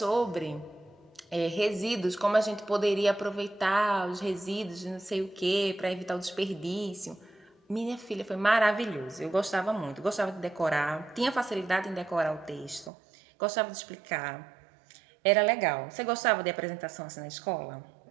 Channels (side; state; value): left; drops out; at 12.9 s